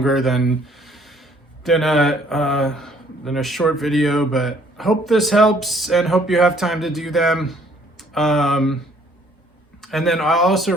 than a short video, but hope this helps and hope you have time to do them. And then I'll also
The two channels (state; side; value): normal; both; correlation 0.61